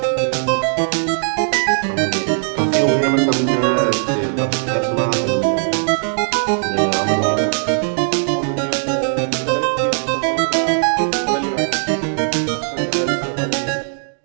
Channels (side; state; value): left; silent; digital silence